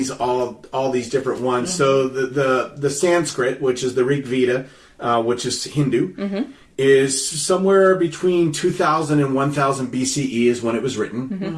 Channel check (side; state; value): both; identical; correlation 1.00